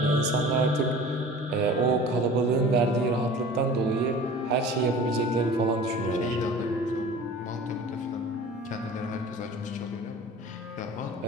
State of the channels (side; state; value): both; normal; correlation 0.41